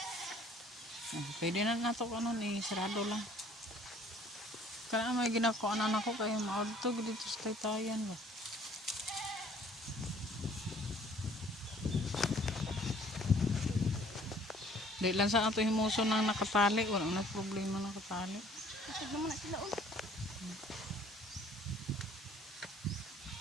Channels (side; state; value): both; normal; correlation 0.56